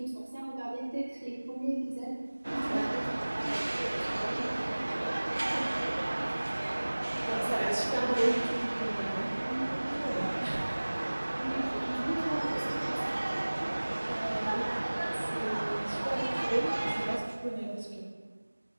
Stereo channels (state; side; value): inverted; both; correlation -1.00